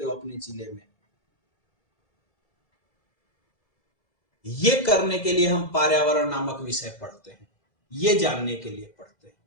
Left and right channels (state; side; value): late; right; 2.1 ms